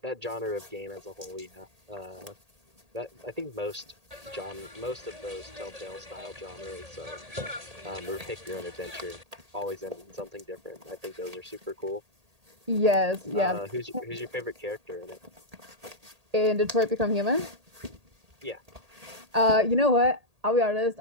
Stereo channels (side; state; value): left; late; 1.8 ms